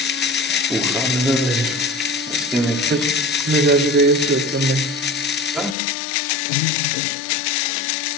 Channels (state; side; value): drops out; right; at 5.8 s